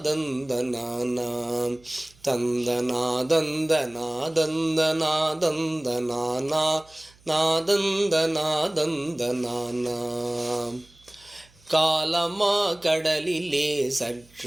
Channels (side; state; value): right; noise; hum, 29 dB below the sound